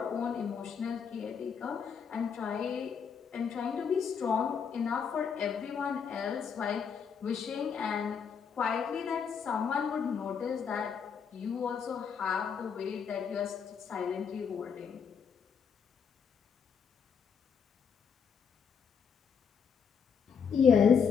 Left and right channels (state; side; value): quieter; right; 6.7 dB